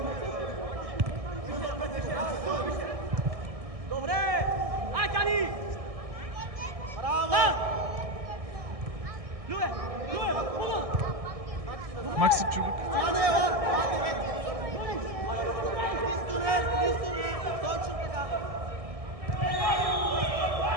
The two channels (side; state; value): left; late; 1.6 ms